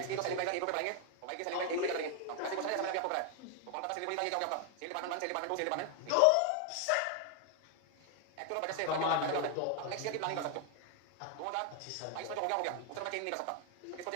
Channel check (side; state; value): both; different; correlation 0.00